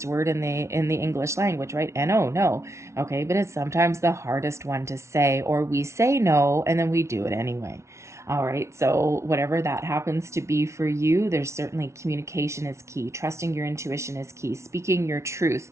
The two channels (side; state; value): left; late; 0.13 ms